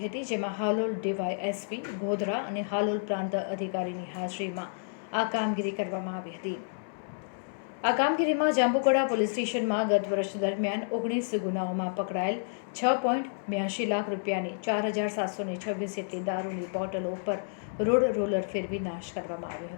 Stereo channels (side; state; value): right; silent; 58 dB below the other